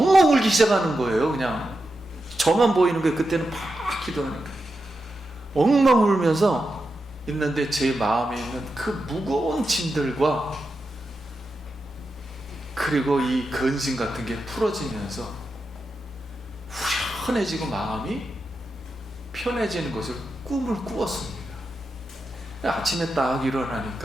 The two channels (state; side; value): normal; both; correlation 0.88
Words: 울기 시작하는 거예요. 그냥 저만 보이는 게 그때는 막 기도하니까 엉엉 울면서 있는데 제 마음에 있는 그 무거운 짐들과 그리고 이 근심 같은 게 풀어지면서 후련해지고 마음이 편해지는 것을 꿈을 꾸었습니다. 아침에 딱